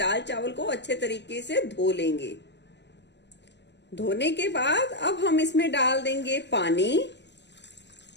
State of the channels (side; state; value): right; late; 0.51 ms